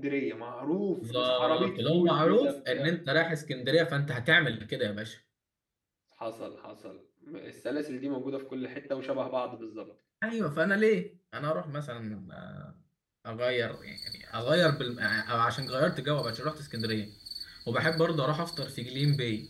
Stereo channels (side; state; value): both; identical; correlation 1.00